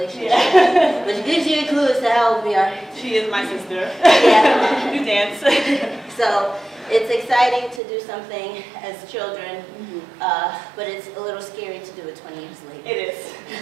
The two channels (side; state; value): left; drops out; at 7.8 s